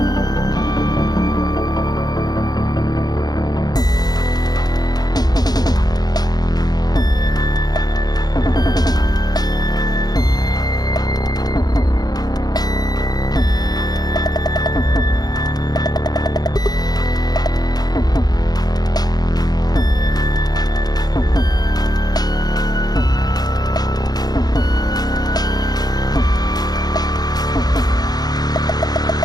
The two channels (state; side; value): late; right; 0.19 ms